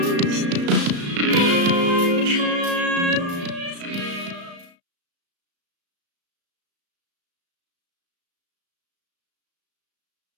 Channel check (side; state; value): left; late; 35 ms